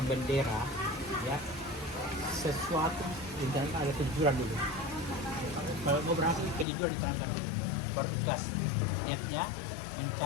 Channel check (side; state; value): right; drops out; at 6.7 s